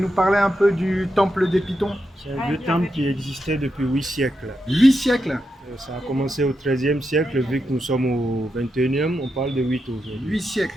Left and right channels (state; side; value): normal; both; correlation 0.86